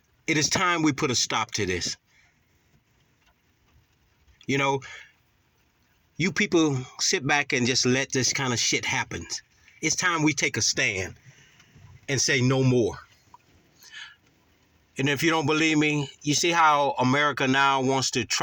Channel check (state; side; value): identical; both; correlation 1.00